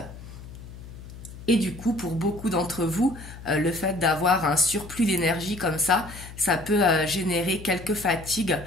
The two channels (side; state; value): left; noise; hum, 15 dB below the sound